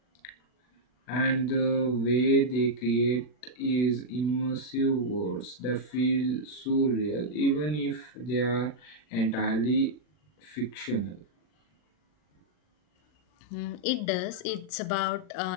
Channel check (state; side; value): late; right; 40 ms